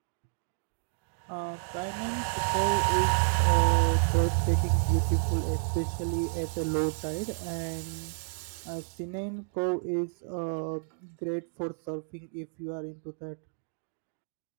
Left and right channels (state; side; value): silent; left; digital silence